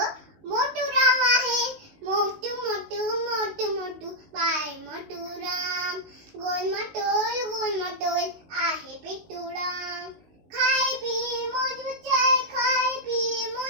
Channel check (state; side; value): late; left; 19 ms